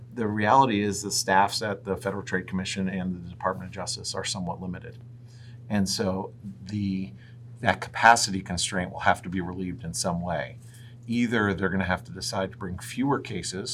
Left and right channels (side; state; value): both; identical; correlation 1.00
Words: the reality is the staffs at the Federal Trade Commission and the Department of Justice are somewhat limited. And so that capacity constraint will have to be relieved in some way. Either they're going to have to decide to bring fewer